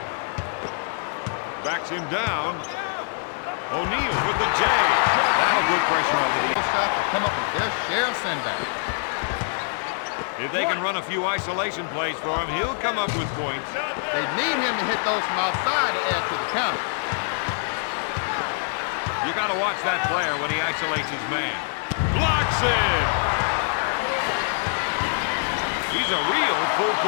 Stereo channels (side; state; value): right; silent; 62 dB below the other